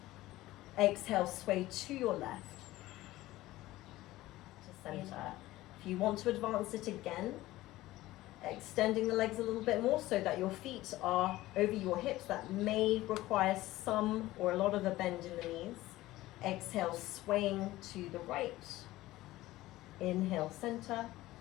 Exhale, sway to your left. To center. If you want to advance it again, extending the legs a little bit more so that your feet are over your hips. That may require some or a lot of a bend in the knees. Exhale, swaying to the right. Inhale, center.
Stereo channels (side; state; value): right; quieter; 17.0 dB